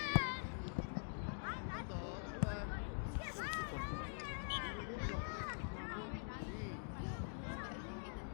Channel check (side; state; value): right; silent; digital silence